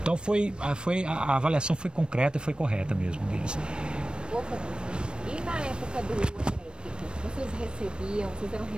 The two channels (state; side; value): late; left; 0.054 ms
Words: Então a avaliação foi concreta e foi correta mesmo deles. E na época do elétrico, vocês recebiam, vocês eram